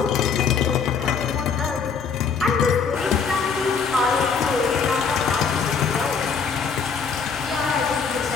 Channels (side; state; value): right; quieter; 5.8 dB